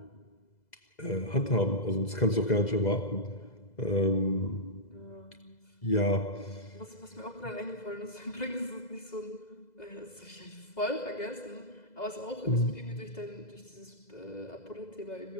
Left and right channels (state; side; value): late; right; 2.0 ms